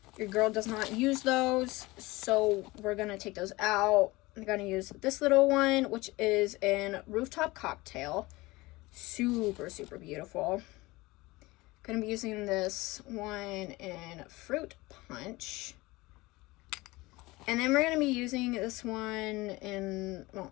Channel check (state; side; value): quieter; right; 21.3 dB